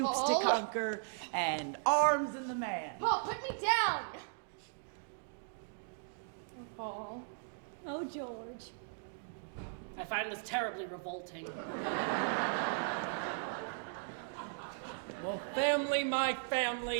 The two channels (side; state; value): left; silent; digital silence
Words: Paul. to conquer, and arms in the man. Paul, put me down! Paul. Oh, George. I find this terribly revolting. Well, family, my